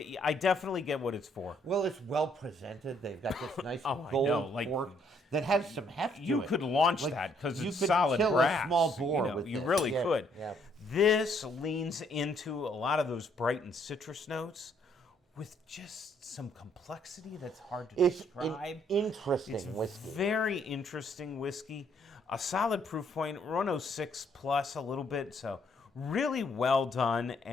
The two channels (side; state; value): both; normal; correlation 0.68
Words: I definitely get what it's for. Well, it's well presented. They've got this nice gold cork that has some heft to it. You could launch that because it's solid brass. You could kill a small boar with you this. really could. Yeah. This leans into a lot of those bright and citrus notes with just some complexity that's hard to describe. It's an interesting whiskey. Very interesting whiskey. A solid proof point, 106 plus a little bit, so really well done